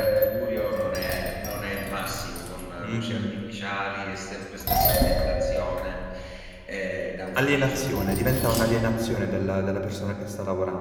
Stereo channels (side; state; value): both; identical; correlation 1.00